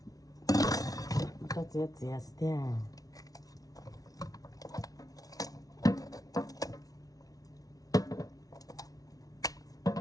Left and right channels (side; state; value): right; late; 0.18 ms